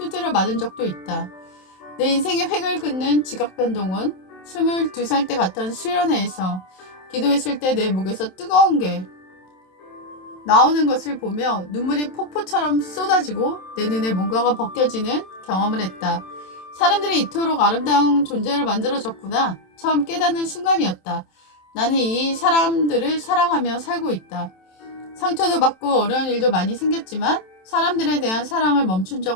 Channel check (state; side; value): late; right; 27 ms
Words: 맞은 적도 있다. 내 인생의 획을 긋는 지각 변동은 22살 때 갔던 수련회에서 기도했을 때 내 목에서 뜨거운 게 나오는 것을 보며 눈물이 폭포처럼 쏟아지고 내 눈에 뭔가가 벗겨지는 경험을 했다. 사람들이 이토록 아름다운 존재를 만들어줬구나. 처음 깨닫는 순간이었다. 나는 이 사람들을 사랑하며 살고 있다. 상처도 받고 어려운 일도 많이 생겼지만 사람들에 대한 사랑을 멈춘